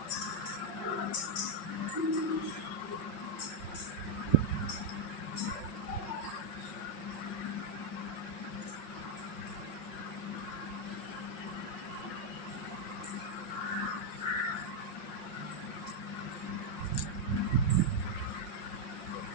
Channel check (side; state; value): right; late; 5.6 ms